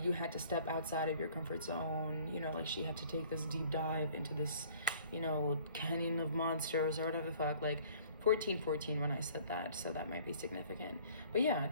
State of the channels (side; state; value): both; inverted; correlation -0.53